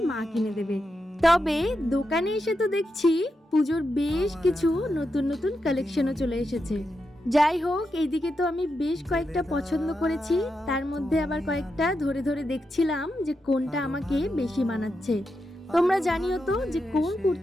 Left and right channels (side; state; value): both; normal; correlation 0.86